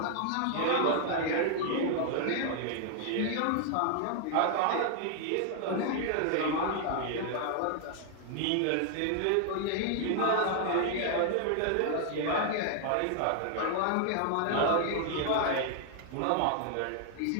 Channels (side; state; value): both; different; correlation 0.00